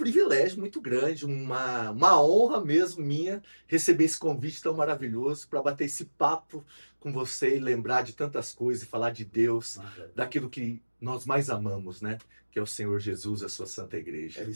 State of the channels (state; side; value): inverted; both; correlation -1.00